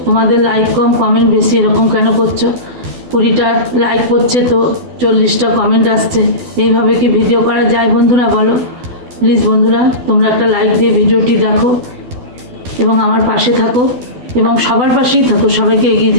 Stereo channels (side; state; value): left; late; 12 ms